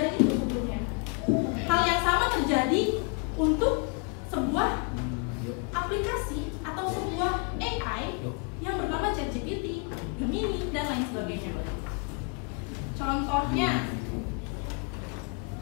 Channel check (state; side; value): quieter; right; 36.4 dB